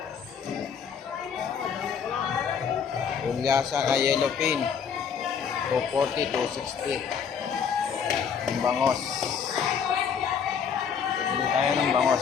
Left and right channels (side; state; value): right; quieter; 7.0 dB